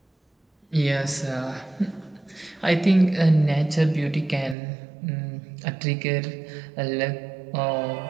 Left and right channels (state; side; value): drops out; left; at 4.5 s